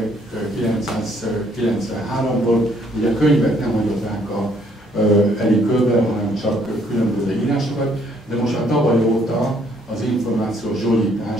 ugye a könyvet nem hagyott ránk Erik Köbel, hanem csak különböző írásokat, de most már tavaly óta az Információs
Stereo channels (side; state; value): both; normal; correlation 0.66